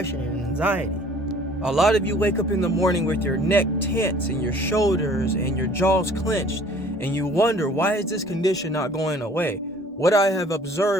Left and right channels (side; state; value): both; normal; correlation 0.53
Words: and anxiety. A lot of you wake up in the morning with your neck tense and your shoulders and your jaws clenched, and you wonder, why is this condition not going away? What I have